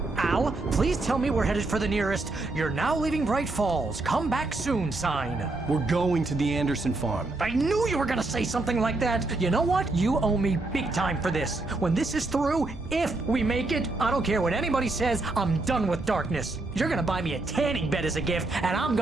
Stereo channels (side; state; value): left; quieter; 3.1 dB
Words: Al, please tell me we're headed for the nearest "You're now leaving Bright Falls. Come back soon" sign. We're going to the Anderson farm. I knew you were gonna say something like that. You know what? You owe me big time for this. When this is through, if we make it, I don't care what anybody says, I'm done with darkness. You're gonna buy me a tanning bed as a gift, and I'm